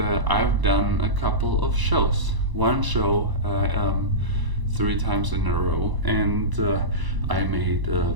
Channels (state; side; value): late; left; 1.0 ms